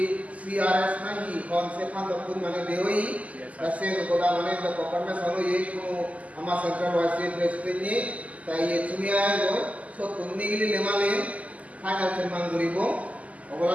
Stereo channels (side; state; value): left; late; 0.071 ms